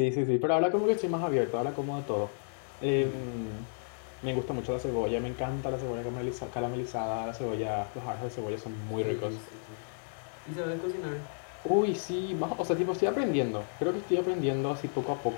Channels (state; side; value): silent; right; digital silence